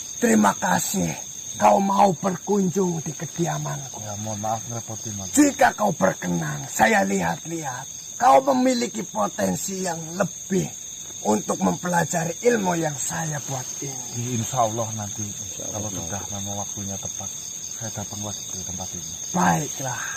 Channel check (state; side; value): identical; both; correlation 1.00